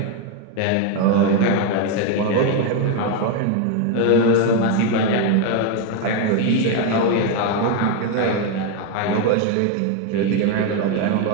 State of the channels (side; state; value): both; different; correlation 0.02